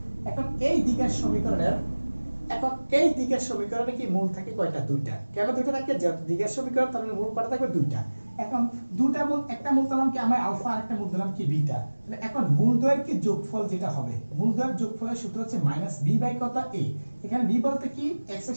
এখন এই দ্বিঘাত সমীকরণে কি মূল থাকে কয়টা? দুইটা। কেন দুইটা থাকে? দ্বিঘাত সমীকরণ তার মূল কয়টা থাকবে? দুইটা। এখন দুটা মূল, একটা মূল দিলাম কি আমরা আলফা আর একটা মূল দিলাম কি বিটা। তাহলে এখন মূলদ্বয়ের কি যোগফল যেটা হবে, মূলদ্বয়ের যোগফলের সূত্র হচ্ছে -b বাই কত a। এখানে b বলতে কি x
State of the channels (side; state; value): both; inverted; correlation -1.00